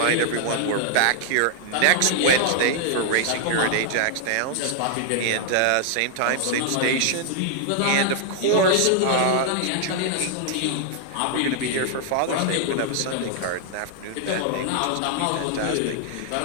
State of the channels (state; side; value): different; both; correlation -0.01